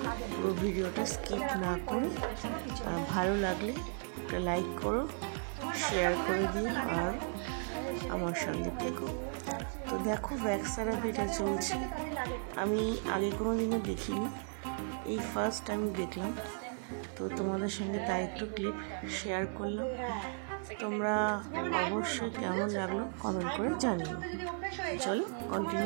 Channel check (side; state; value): left; silent; 54 dB below the other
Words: পুরো ভিডিওটা স্কিপ না করে। ভালো লাগলে একটা লাইক করো, শেয়ার করে দিও আর আমার সঙ্গে থেকো। তো দেখো ভ্যাক্স থেরাপিটা চলছে, আমি আগে কোনো দিনও দেখিনি, এই ফার্স্ট আমি দেখলাম। তো তোমাদের সঙ্গে তাই একটু ক্লিপ শেয়ার করলাম। তোমরা অবশ্যই কেমন লাগলো কমেন্ট করে জানিও। চলো